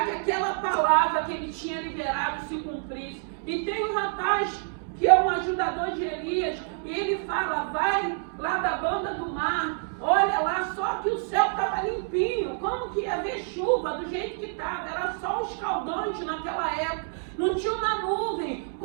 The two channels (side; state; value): left; silent; 60 dB below the other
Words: que aquela palavra que ele tinha liberado se cumprisse. E tem um rapaz que é um ajudador de Elias, e ele fala, vai lá da banda do mar, olha lá, só que o céu estava limpinho, como que ia haver chuva do jeito que estava? Era sol escaldante naquela época, não tinha uma nuvem,